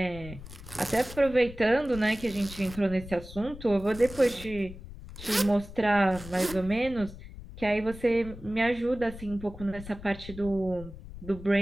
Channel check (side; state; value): left; noise; rumble, 14 dB below the sound